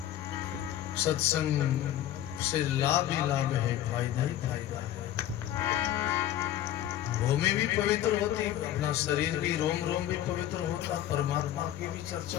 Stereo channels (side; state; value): right; quieter; 12.4 dB